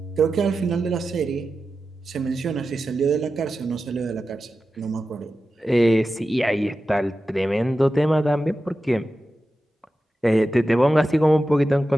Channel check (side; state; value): both; normal; correlation 0.92